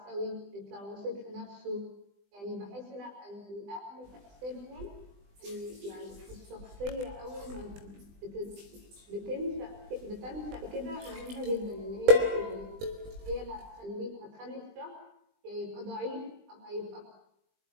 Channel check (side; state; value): left; late; 20 ms